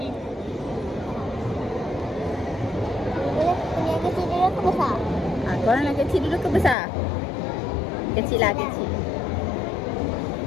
Punya kecil dulu ke besar? Korang nak kecil dulu ke besar? Kecil lah, kecil.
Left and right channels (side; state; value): right; drops out; at 6.8 s